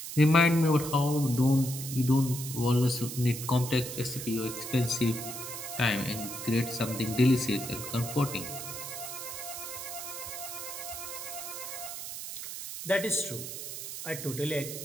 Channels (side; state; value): right; noise; hiss, 8 dB below the sound